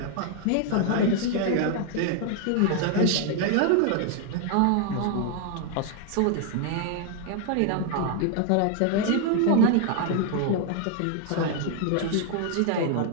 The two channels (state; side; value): different; both; correlation 0.00